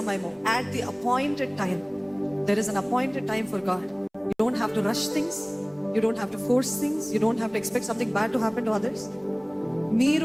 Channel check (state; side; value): identical; both; correlation 1.00